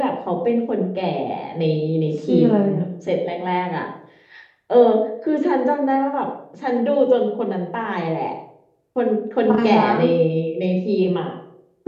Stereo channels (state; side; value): identical; both; correlation 1.00